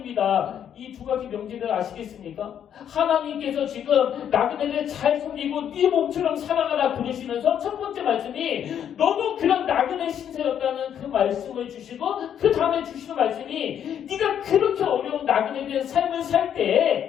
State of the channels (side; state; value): right; quieter; 9.2 dB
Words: 이 두 가지 명제를 아시겠습니까? 하나님께서 지금 나그네를 잘 섬기고 네 몸처럼 사랑하라 그러시면서 첫 번째 말씀이 너도 그런 나그네 신세였다는 그 말씀을 주시고 그 다음에 주시는 말씀이 네가 그렇게 어려운 나그네된 삶을 살